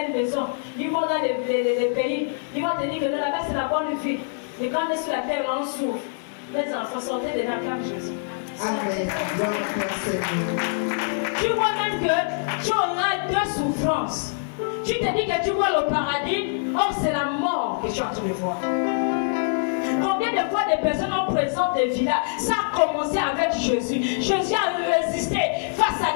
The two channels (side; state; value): right; silent; 62 dB below the other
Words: maisons. Ils vont dans les pays. Ils vont te dire que là-bas, c'est la bonne vie. Et quand on est sur la terre, là, on souffre. Les enfants, sortez de la cave Jésus. Amen. Tu vois même que tu auras deux souffrances. Tu te dis que tu vois le paradis, or c'est la mort que tu es en train de voir. Combien de fois des personnes ont présenté des villas? Ça a commencé avec Jésus. Jésus a résisté face à